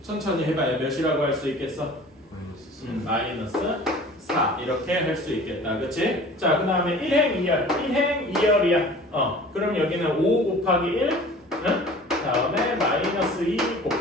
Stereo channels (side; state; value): both; normal; correlation 0.44